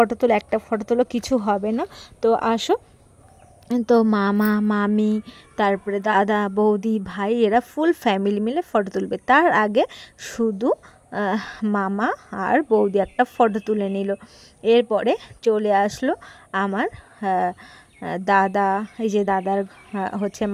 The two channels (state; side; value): identical; both; correlation 1.00